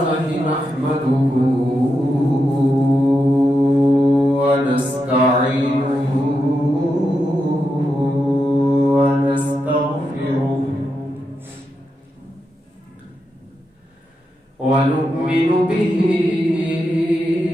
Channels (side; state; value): both; normal; correlation 0.86